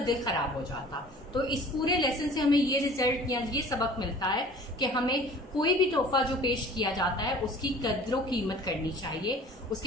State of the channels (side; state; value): both; normal; correlation 0.46